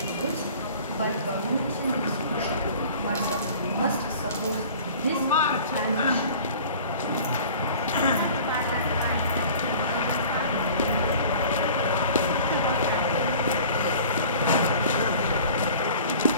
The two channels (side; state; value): both; inverted; correlation -0.45